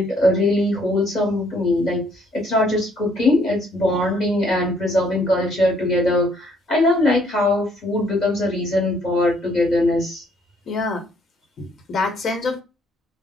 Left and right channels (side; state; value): both; normal; correlation 0.65